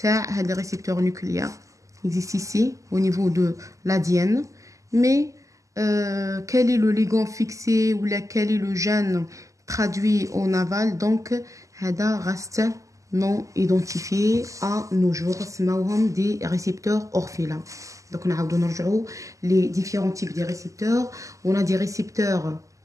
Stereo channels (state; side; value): late; left; 0.16 ms